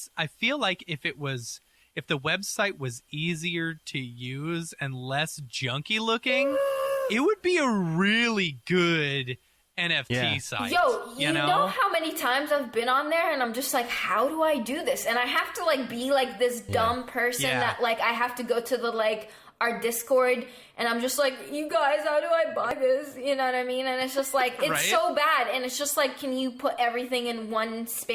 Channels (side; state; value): both; identical; correlation 1.00